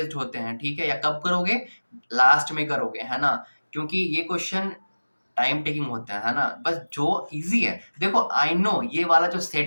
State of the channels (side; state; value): both; inverted; correlation -1.00